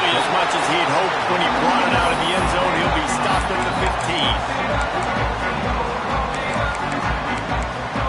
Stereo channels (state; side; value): identical; both; correlation 1.00